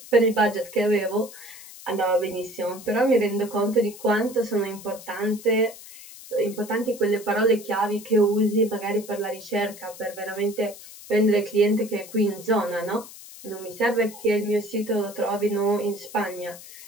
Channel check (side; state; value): left; noise; hiss, 17 dB below the sound